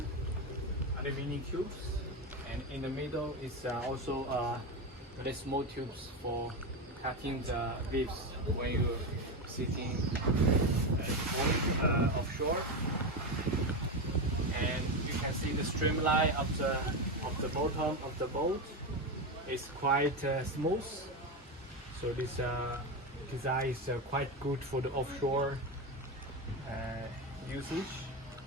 aluminum cubes, and in the middle is also very small tubes for cutting the waves when you're sitting offshore. And you can see the streamline of the bottom of the boat is quite smooth. So this design is quite good for the offshore usage.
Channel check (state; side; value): normal; both; correlation 0.15